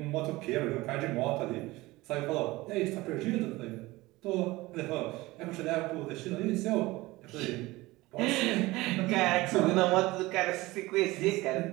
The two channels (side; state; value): left; quieter; 20.1 dB